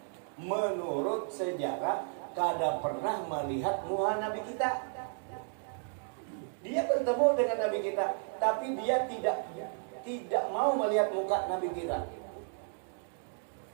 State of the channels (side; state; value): left; silent; 56 dB below the other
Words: menurut sejarah kada pernah melihat muka Nabi kita. Dia bertemu dengan Nabi kita, tapi dia tidak mau melihat muka Nabi kita.